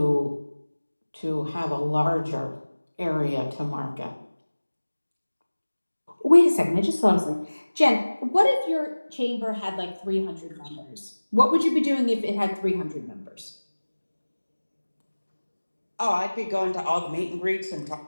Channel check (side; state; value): both; inverted; correlation -1.00